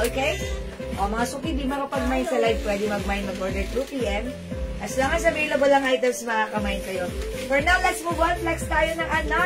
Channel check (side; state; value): both; identical; correlation 1.00